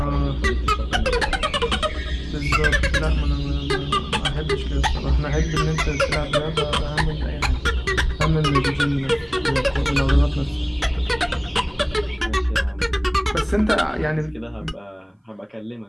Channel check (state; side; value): identical; both; correlation 1.00